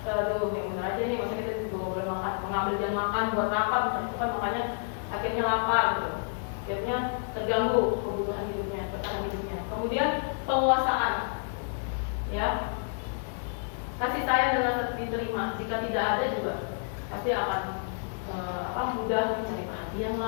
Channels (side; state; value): right; silent; digital silence